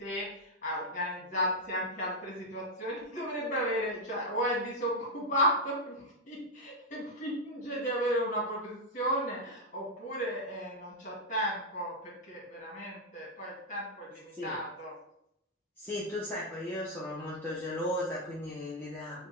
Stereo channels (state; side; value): normal; both; correlation -0.01